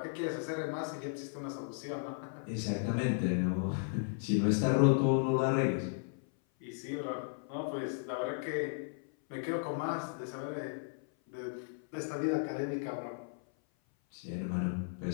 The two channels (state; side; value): silent; right; 54 dB below the other